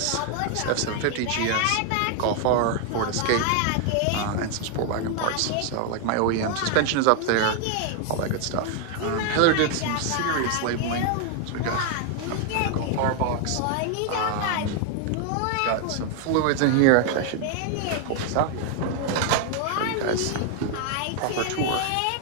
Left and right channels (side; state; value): both; different; correlation 0.00